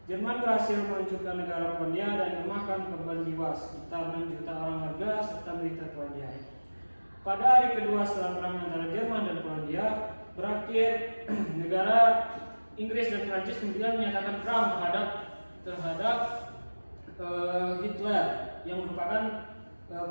Jerman berhasil menghancurkan negara Polandia dan memakan korban jiwa sekitar 6 juta orang warga serta militer Polandia. Pada hari kedua setelah perang antara Jerman dan Polandia berakhir, negara Inggris dan Prancis kemudian menyatakan perang terhadap Hitler yang merupakan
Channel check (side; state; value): both; inverted; correlation -1.00